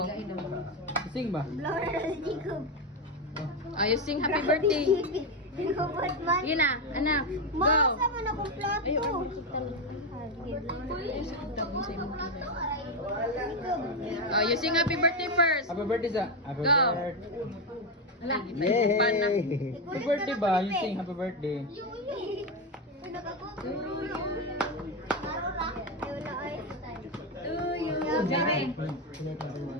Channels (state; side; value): normal; both; correlation 0.09